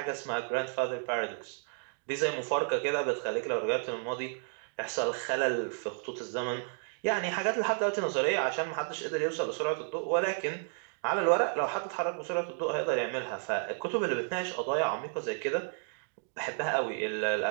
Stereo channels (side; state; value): left; silent; 56 dB below the other